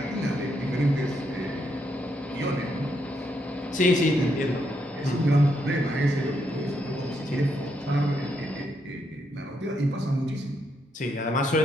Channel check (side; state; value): both; normal; correlation 0.78